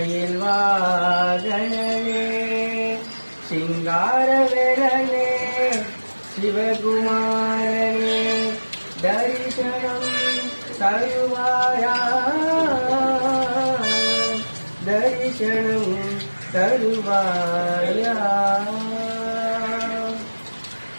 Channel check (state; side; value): inverted; both; correlation -1.00